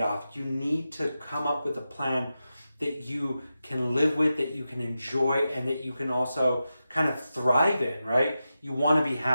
You need to come up with a plan that you can live with, that you can enjoy, and that you can also kind of thrive in, right? You want to be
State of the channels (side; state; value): both; inverted; correlation -0.91